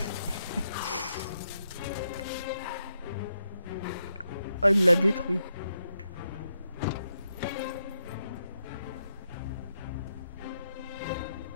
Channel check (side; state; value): both; inverted; correlation -0.82